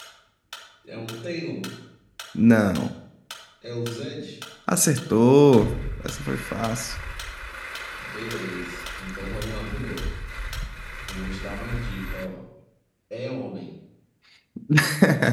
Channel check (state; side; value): identical; both; correlation 1.00